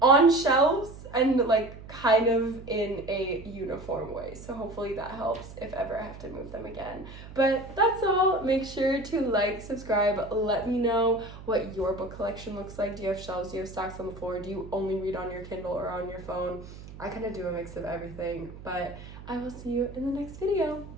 on shelves and like kind of in a uniform way, so hopefully that helps if ever I have to move them again. But that's all. Make sure to like, subscribe, let me know what your book collection looks like. Do you have shelves? Do you have stacks on the floor? Do you only read on your Kindle or on your phone? I kind of do a mix of everything, but I will see you in the next video.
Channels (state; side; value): noise; right; hum, 15 dB below the sound